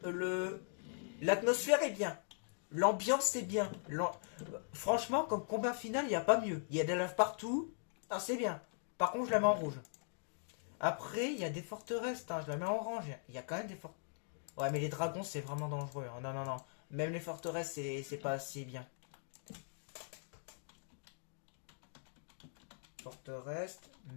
l'atmosphère est bien. L'ambiance est bien. Franchement, comme combat final, il n'y a pas mieux. Il y a des laves partout. Ah, c'est bien. Par contre, je la mets en rouge. Après, il y a des forteresses. Hein, je la mets en orange. Il y a quand même des forteresses. Ouais, mais les dragons, c'est vraiment dangereux. Hein. Non, non, non. Même les forteresses, c'est pas assez bien. Forteresse,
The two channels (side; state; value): right; silent; digital silence